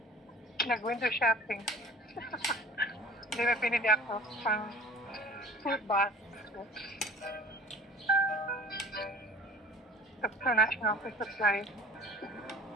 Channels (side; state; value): both; normal; correlation 0.45